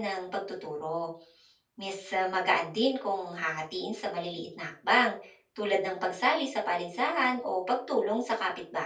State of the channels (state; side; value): identical; both; correlation 1.00